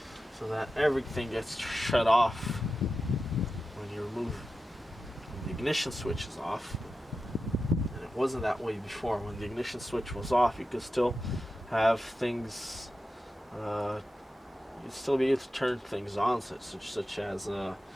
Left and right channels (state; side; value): normal; both; correlation 0.92